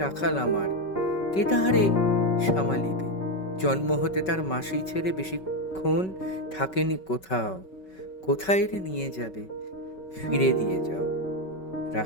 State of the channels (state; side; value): late; right; 5.3 ms